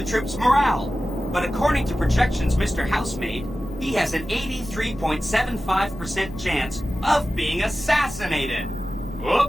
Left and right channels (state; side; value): normal; both; correlation 0.95